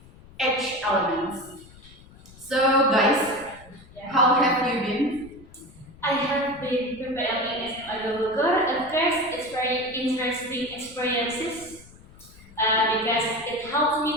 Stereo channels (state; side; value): noise; left; rumble, 22 dB below the sound